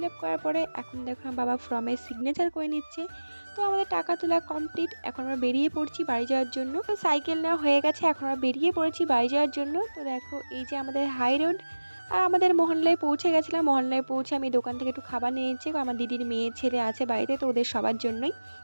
আপ করার পরে এখন দেখো আমার বাবা ফর্মে সিগনেচার করে নিচ্ছে। তো আমাদের টাকা তোলা কমপ্লিট, এখন আমরা বেরিয়ে পড়ছি বাড়ি যাওয়ার জন্য। তো সাইকেল নেওয়া হয়ে গেছে, এখন আমরা বেরিয়ে পড়েছি বাড়ি যাওয়ার জন্য। তো দেখো এই যে আমাদের হাই রোড, আর আমাদের মহল্লায় পৌঁছে গেছিলাম। মহল্লায় পৌঁছে আমি দোকান থেকে একটু খাবার নিয়ে নিচ্ছি, আমার দিদির মেয়ে ছেলে আছে বাড়িতে, তো ওদের সবার জন্যই।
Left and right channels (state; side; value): inverted; both; correlation -1.00